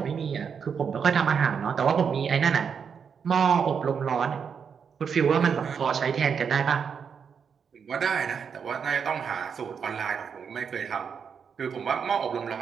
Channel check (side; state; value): left; quieter; 6.7 dB